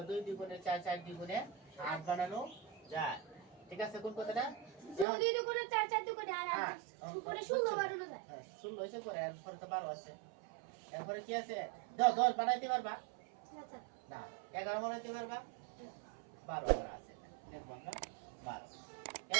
2 2 গুণে 4 4 2 গুণে 8 বানানো যায়। ঠিক আছে কোন কথাটা? যদি দুগুণে 4 4 দুগুণে আর হ্যাঁ, উপরে 16 বানানো যায়। 16 হয়েছে পরে এরপরে তো 12 আছে। এরপরে কি আছে? 10 বানাইতে পারবা? আচ্ছা না। 11 বানাইতে পারবা? 12 করা আছে। দেখবো আমরা 12।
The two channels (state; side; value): drops out; left; at 5.1 s